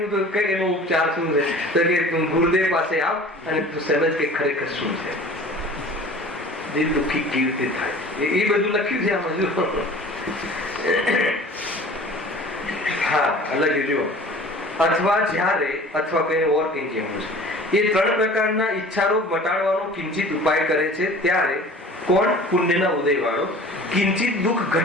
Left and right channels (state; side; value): normal; both; correlation 0.44